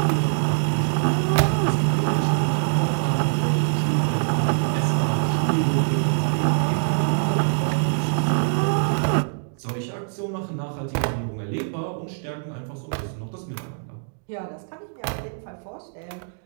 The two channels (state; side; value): silent; left; digital silence